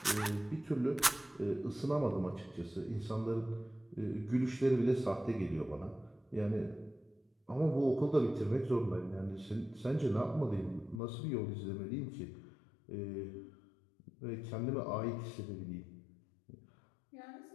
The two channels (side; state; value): right; drops out; at 11.0 s